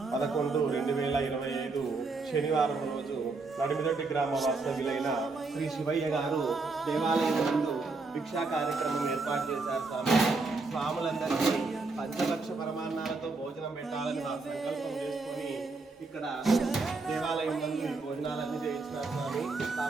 11/2025 శనివారం రోజు నడిమిదొడ్డి గ్రామ వాస్తవ్యులైన శ్రీ శివయ్య గారు దేవాలయం నందు భిక్షా కార్యక్రమం ఏర్పాటు చేశారు. స్వాములందరికీ పంచలక్ష పరమాన్నాలతో భోజనం పెట్టాలని వారు సంకల్పం చేసుకొని ఇక్కడ దేవాలయం నందు ఈ భోజనాలన్నీ చేయించినారు స్వామి.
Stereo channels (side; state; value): left; quieter; 3.8 dB